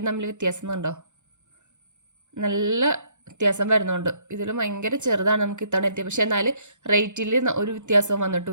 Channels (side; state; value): left; late; 0.84 ms